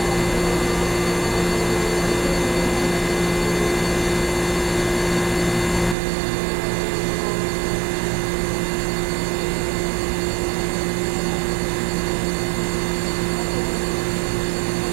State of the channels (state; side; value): drops out; left; at 6.0 s